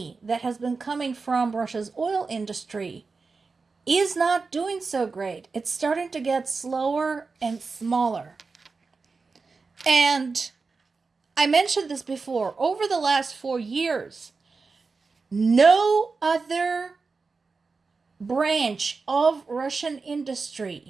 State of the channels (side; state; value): left; quieter; 4.4 dB